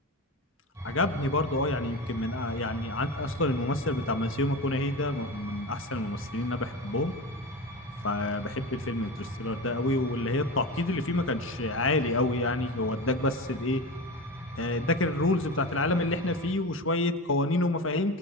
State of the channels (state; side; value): normal; both; correlation 0.26